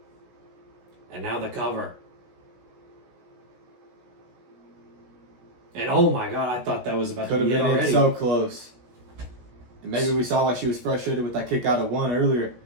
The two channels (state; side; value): late; left; 17 ms